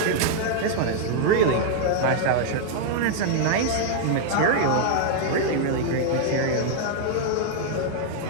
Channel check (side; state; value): both; different; correlation 0.00